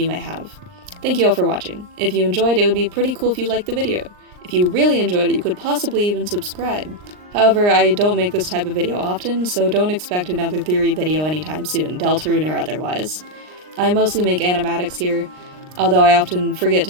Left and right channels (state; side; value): late; left; 39 ms